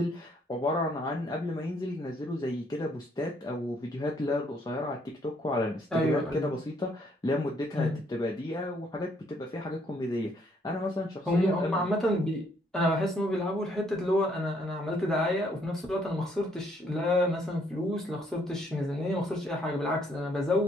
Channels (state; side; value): normal; both; correlation 0.68